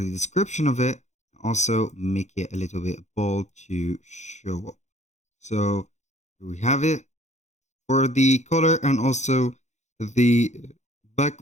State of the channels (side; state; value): right; late; 0.34 ms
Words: description of it. Also make it a little bit bold to show up. So here we have it. For the color and also the